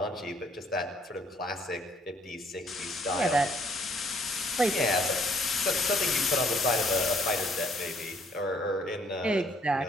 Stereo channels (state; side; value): normal; both; correlation 0.64